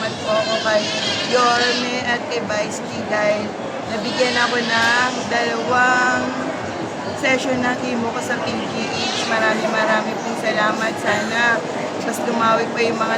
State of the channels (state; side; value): identical; both; correlation 1.00